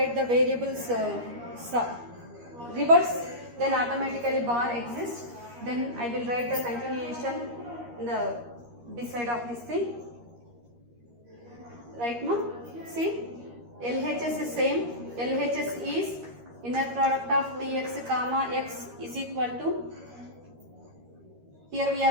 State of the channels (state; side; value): late; left; 13 ms